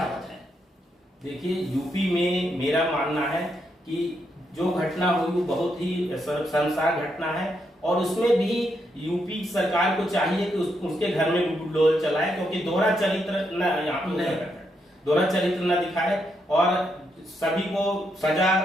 मत है? देखिए, यूपी में मेरा मानना है कि जो घटना हुई वो बहुत ही शर्मसार घटना है और उसमें भी यूपी सरकार को चाहिए कि उसके घर में बुलडोजर चलाए, क्योंकि दोहरा चरित्र न दिखाए और सभी को सजा,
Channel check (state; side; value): normal; both; correlation 0.79